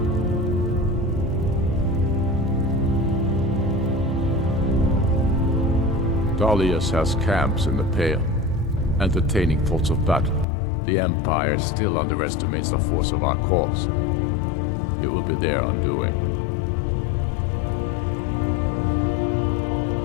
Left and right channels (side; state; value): right; drops out; at 10.5 s